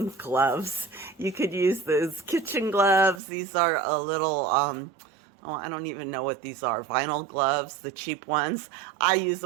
gloves. You could use those kitchen gloves. These are a little, I don't even know what these are. Vinyl gloves, the cheap ones. I use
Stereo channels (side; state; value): left; drops out; at 3.2 s